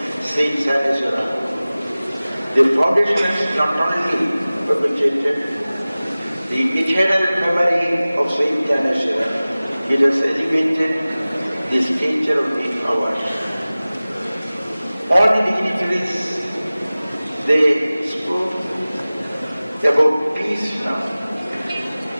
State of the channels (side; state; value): both; inverted; correlation -0.98